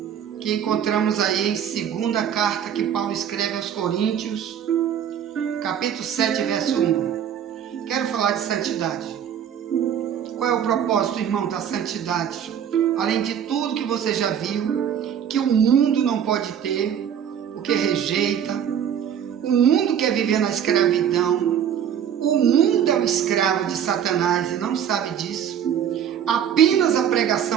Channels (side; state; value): left; quieter; 8.9 dB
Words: que encontramos aí em segunda carta que Paulo escreve aos Coríntios, capítulo 7, verso 1. Quero falar de santidade. Qual é o propósito, irmão, da santidade? Além de tudo que você já viu, que o mundo não pode ter, o que rejeita, o mundo quer viver na escravidão, o mundo é o escravo de Satanás e não sabe disso. Apenas a